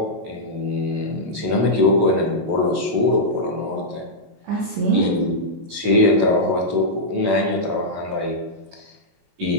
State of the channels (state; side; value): late; left; 19 ms